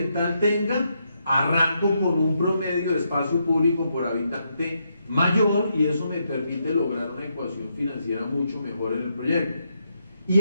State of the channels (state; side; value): inverted; both; correlation -0.80